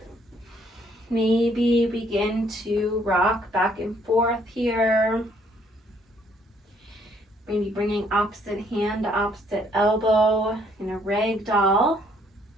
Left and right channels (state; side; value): normal; both; correlation 0.66